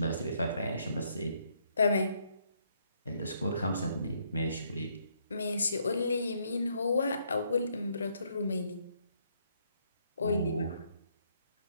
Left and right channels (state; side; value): inverted; both; correlation -0.71